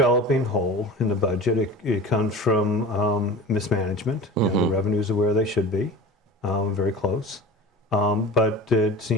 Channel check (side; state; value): both; normal; correlation 0.36